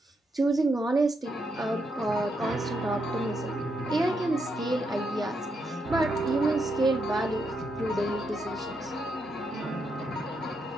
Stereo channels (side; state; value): both; normal; correlation 0.81